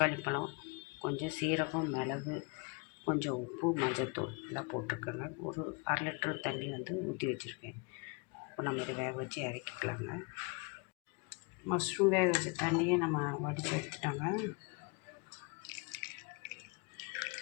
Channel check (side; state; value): right; quieter; 31.4 dB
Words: பழம், கொஞ்சம் சீரகம், மிளகு, கொஞ்சம் உப்பு, மஞ்சள்தூள் எல்லாம் போட்டிருக்கேங்க. ஒரு 1/2 லிட்டர் தண்ணி வந்து ஊற்றி வச்சுருக்கேன். இப்போ நம்ம இதை வேக வச்சு இறக்கிக்கலாங்க. மஷ்ரூம் வேக வச்ச தண்ணியை நம்ம வடித்து எடுத்துட்டோங்க.